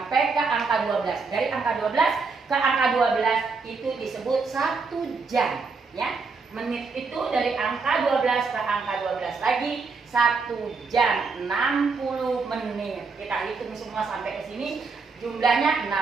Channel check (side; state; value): left; quieter; 4.5 dB